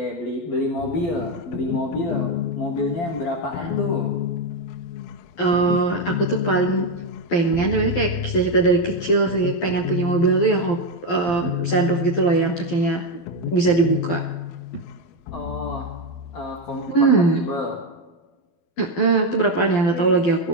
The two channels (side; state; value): right; late; 12 ms